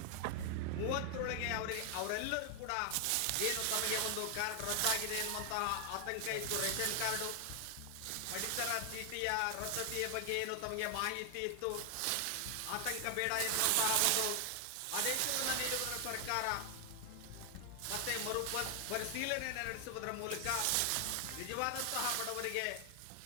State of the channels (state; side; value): different; both; correlation 0.00